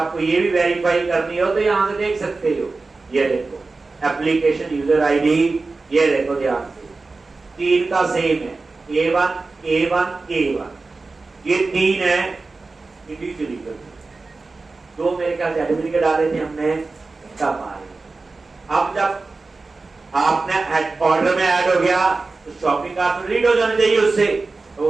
ये भी वेरीफाई करनी हो तो यहां से देख सकते हो, ये देखो एप्लीकेशन यूजर आईडी, ये देखो ध्यान से 3 का सेम है, A1 A1 A1, ये 3 है इंडिविजुअली कर, दो मेरे ख्याल से एडमिट डाले थे हमने, तब आ रहे। अब जब आपने ऑर्डर में ऐड हो गया तो शॉपिंग कार्ट में रीड हो जाना चाहिए उससे, तो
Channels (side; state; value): left; quieter; 3.8 dB